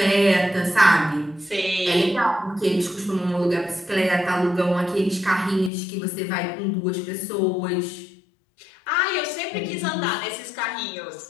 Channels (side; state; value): right; drops out; at 5.7 s